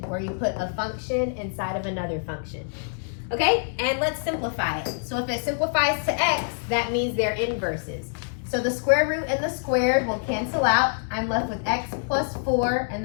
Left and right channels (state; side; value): silent; right; digital silence